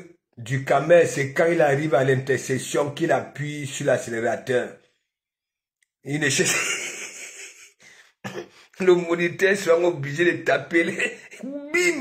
Ducamel, c'est quand il arrive à l'intersection qu'il appuie sur l'accélérateur. Il ne cherche... Le moniteur sera obligé de taper les...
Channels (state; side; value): identical; both; correlation 1.00